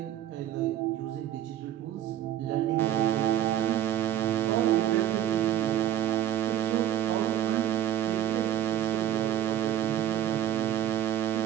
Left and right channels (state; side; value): quieter; left; 11.3 dB